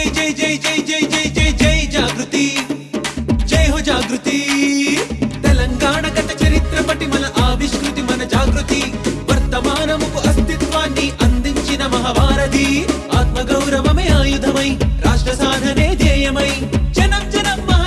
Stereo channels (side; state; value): both; identical; correlation 1.00